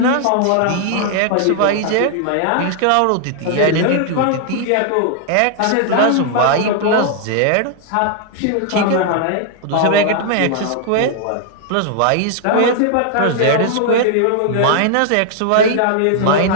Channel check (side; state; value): both; different; correlation 0.00